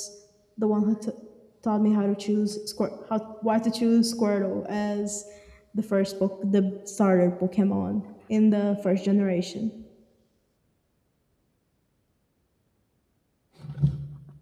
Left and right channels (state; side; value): identical; both; correlation 1.00